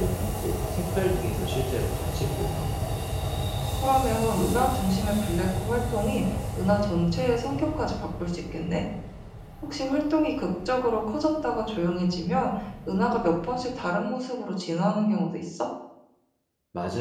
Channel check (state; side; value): identical; both; correlation 1.00